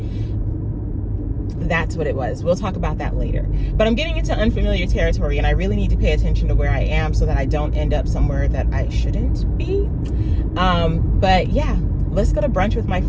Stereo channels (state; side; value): identical; both; correlation 1.00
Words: That's what it was. We'll talk about that later. But I'm getting into unfamiliar territory, and I really need to pay attention to where I am so that I don't end up somewhere that I shouldn't be. But yeah, let's go to brunch with my